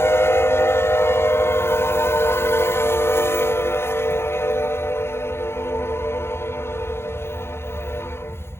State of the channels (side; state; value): right; late; 0.12 ms